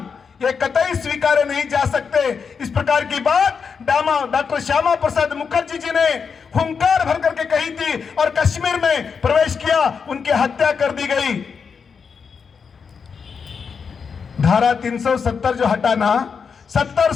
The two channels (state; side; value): quieter; right; 6.0 dB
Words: ये कतई स्वीकारे नहीं जा सकते। इस प्रकार की बात डॉक्टर श्यामा प्रसाद मुखर्जी जी ने हुंकार भर करके कही थी और कश्मीर में प्रवेश किया, उनकी हत्या कर दी गई। धारा 370 जो हटाना, 70